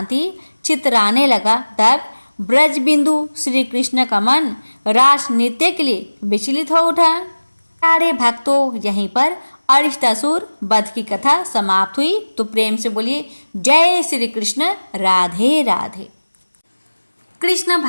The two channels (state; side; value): inverted; both; correlation -1.00